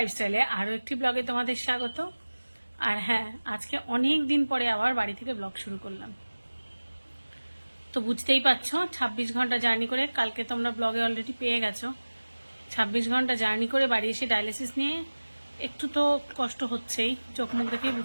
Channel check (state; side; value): inverted; both; correlation -1.00